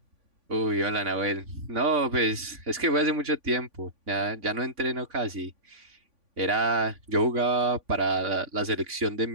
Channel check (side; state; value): left; late; 3.5 ms